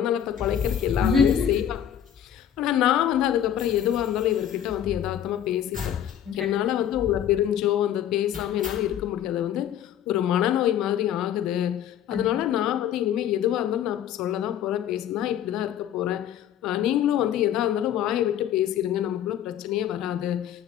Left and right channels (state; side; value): quieter; right; 10.2 dB